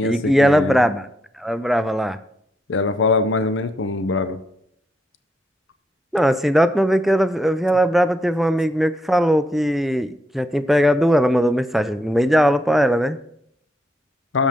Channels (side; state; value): both; normal; correlation 0.79